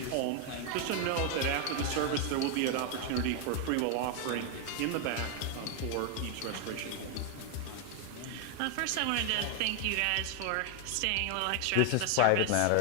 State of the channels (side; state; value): both; different; correlation 0.00